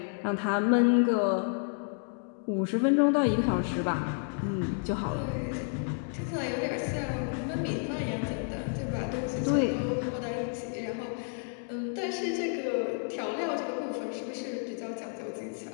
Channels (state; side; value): silent; right; 55 dB below the other